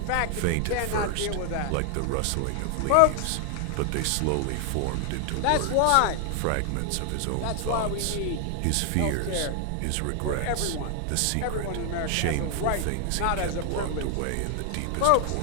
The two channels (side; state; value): both; different; correlation 0.00